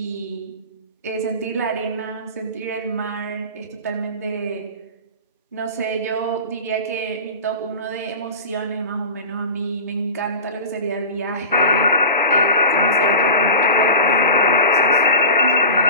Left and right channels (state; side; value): inverted; both; correlation -0.31